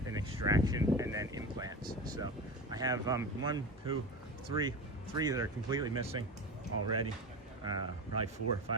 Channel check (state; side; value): normal; both; correlation 0.26